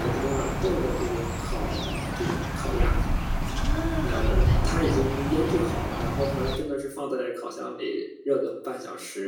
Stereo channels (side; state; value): both; identical; correlation 1.00